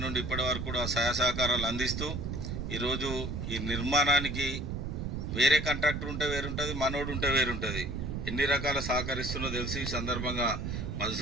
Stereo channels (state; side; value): noise; right; rumble, 4 dB below the sound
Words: నుండి ఇప్పటి వరకు కూడా సహాయ సహకారాలు అందిస్తూ ఈరోజు ఈ నిర్మాణానికి వేరే కాంట్రాక్టర్ ఉంటే వేరుంటుంది, మనోడు ఉంటే వేరుంటుంది, ఎన్ని రకాల సహకరిస్తుందో తెలిసి ఈ సందర్భంగా